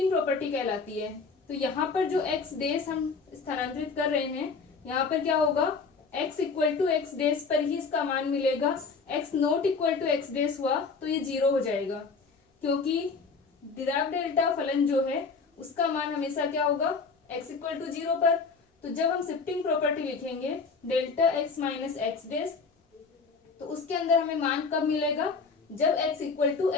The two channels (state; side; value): quieter; right; 4.8 dB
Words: प्रॉपर्टी कहलाती है। तो यहाँ पर जो x डेस हम स्थानांतरित कर रहे हैं, यहाँ पर क्या होगा, x equal to x dash पर ही इसका मान मिलेगा। x not equal to x dash हुआ तो ये 0 हो जाएगा, क्योंकि डिराक डेल्टा फलन जो है उसका मान हमेशा क्या होगा, x इक्वल टू 0 पर। तो जब हम शिफ्टिंग प्रॉपर्टी लिखेंगे delta x minus x dash, तो उसके अंदर हमें मान कब मिलेगा, जब x equal to